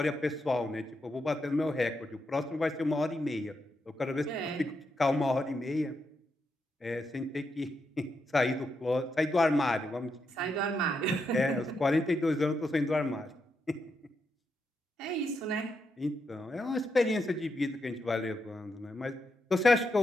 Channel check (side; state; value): both; normal; correlation 0.83